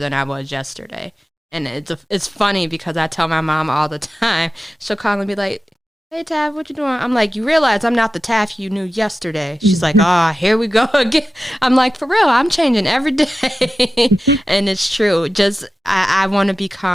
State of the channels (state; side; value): normal; both; correlation 0.94